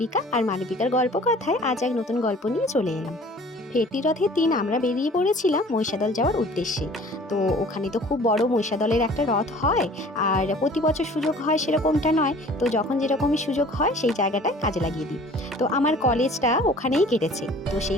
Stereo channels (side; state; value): both; normal; correlation 0.49